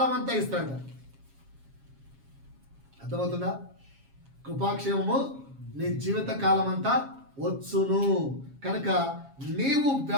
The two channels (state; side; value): late; left; 7.3 ms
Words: అంతా ఇస్తాడు. అర్థమవుతుందా? కృపాక్షేమము నీ జీవిత కాలం అంతా వచ్చును. కనుక నీవు